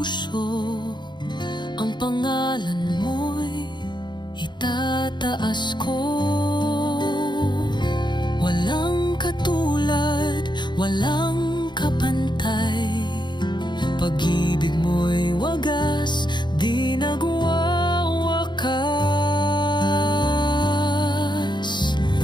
ang pangalan mo'y itataas ko. Walang katulad, walang kapantay, pag-ibig mo'y wagas, di nagwawakas.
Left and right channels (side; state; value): right; late; 0.22 ms